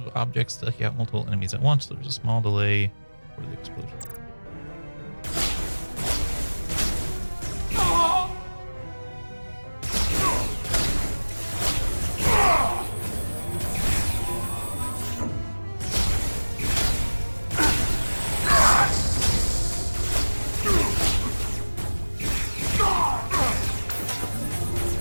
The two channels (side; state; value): both; inverted; correlation -1.00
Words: objects to take out multiple enemies at once. There's a small delay for the explosion.